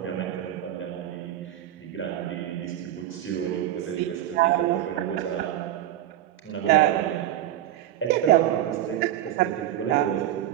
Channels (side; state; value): left; quieter; 12.5 dB